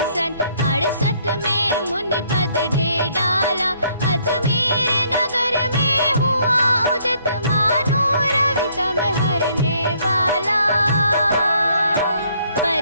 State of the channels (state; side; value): inverted; both; correlation -0.66